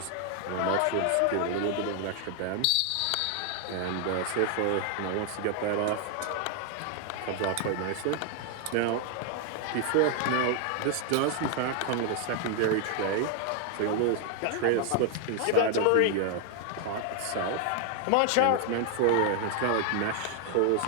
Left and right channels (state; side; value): different; both; correlation 0.00